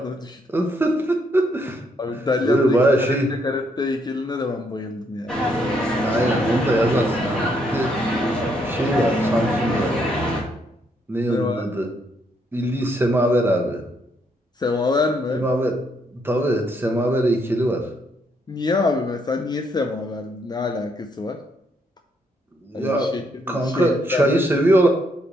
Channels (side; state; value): both; normal; correlation 0.73